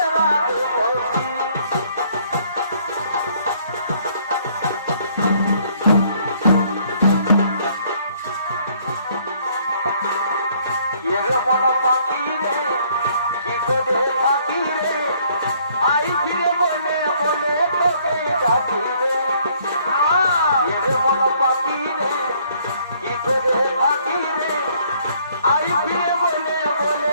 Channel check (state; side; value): inverted; both; correlation -0.63